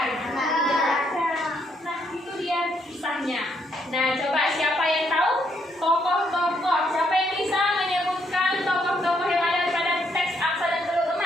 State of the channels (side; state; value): both; normal; correlation 0.73